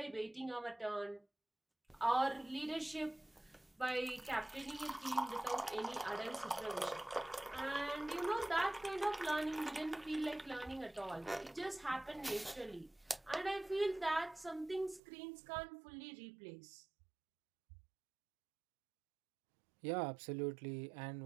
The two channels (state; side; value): drops out; left; at 15.0 s